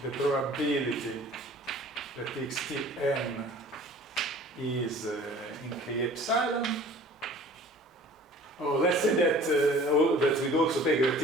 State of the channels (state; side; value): normal; both; correlation 0.48